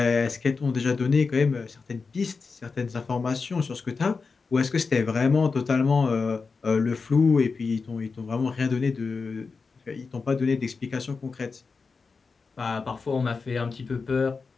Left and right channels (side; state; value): right; quieter; 4.7 dB